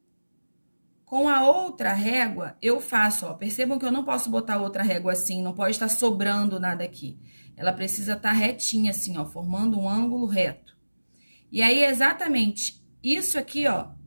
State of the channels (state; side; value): inverted; both; correlation -1.00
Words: Com a outra régua, eu faço, ó, percebam que eu não posso botar outra régua assim, não pode estar sobrando nada aqui. Ela precisa estar retinha assim, ó, formando um ângulo reto. E aí, exatamente isso aqui, ó,